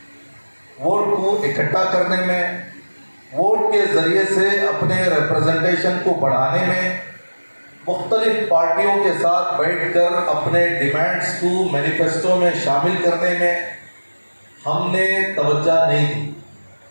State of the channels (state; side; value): inverted; both; correlation -1.00